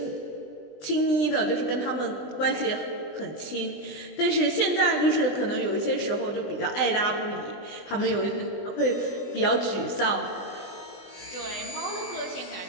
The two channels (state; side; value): late; right; 20 ms